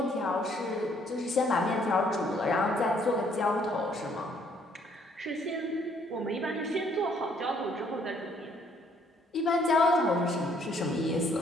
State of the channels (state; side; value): normal; both; correlation 0.65